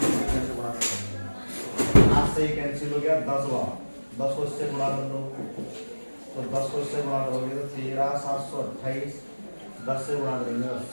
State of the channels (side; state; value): both; inverted; correlation -1.00